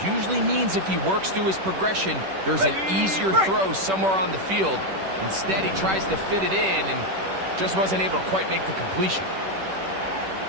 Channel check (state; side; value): late; left; 10 ms